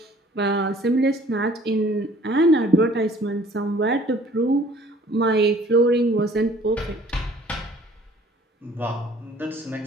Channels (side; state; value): both; normal; correlation 0.54